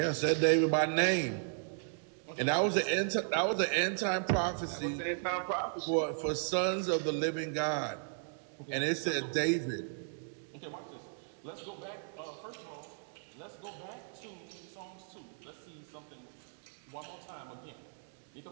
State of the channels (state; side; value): silent; left; digital silence